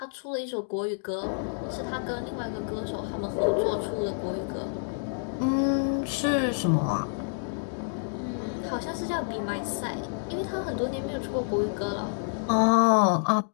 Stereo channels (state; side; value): silent; right; digital silence